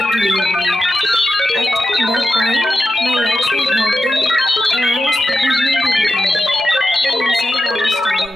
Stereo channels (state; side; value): normal; both; correlation 0.90